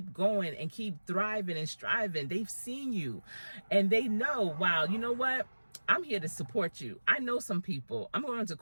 going and keep thriving and striving. They've seen you, and they know, wow, you know what? I'm here to support you. I know some people. I'm going to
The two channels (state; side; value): inverted; both; correlation -1.00